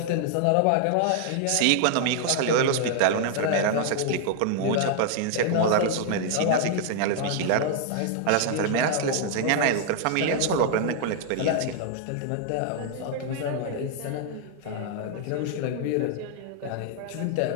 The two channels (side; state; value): both; different; correlation 0.00